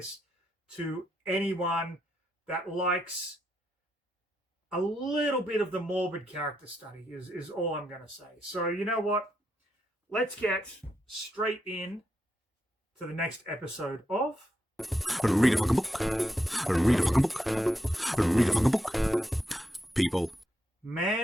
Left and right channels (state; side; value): normal; both; correlation 0.82